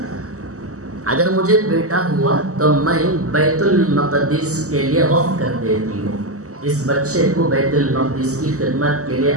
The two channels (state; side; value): late; left; 0.66 ms